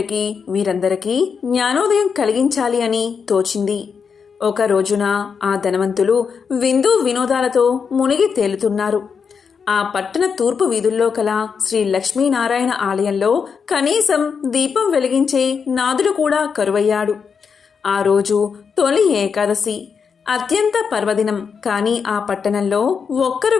వీరందరికీ జ్ఞానోదయం కలిగించాలి అని తోచింది. ఒక రోజున ఆ ధనవంతులు విందు వినోదాలతో మునిగి తేలుతున్నారు. ఆ పట్టణ తూర్పు వీధుల్లో కల శ్రీ లక్ష్మీనారాయణ ఆలయంలో కనీసం దీపం వెలిగించే నాదుడు కూడా కరువయ్యాడు. ఆ రోజు తొలి ఏకాదశి, అత్యంత పర్వదినం. కానీ ఆ పట్టణంలో ఒక్కరు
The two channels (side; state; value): right; quieter; 6.1 dB